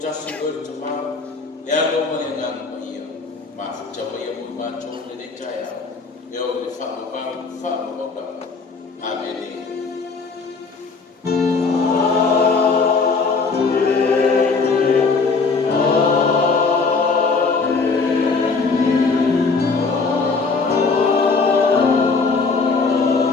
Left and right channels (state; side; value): quieter; right; 4.4 dB